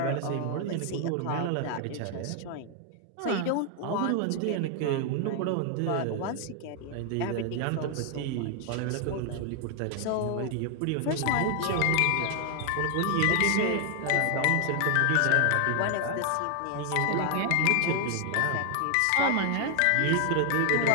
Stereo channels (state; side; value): different; both; correlation 0.00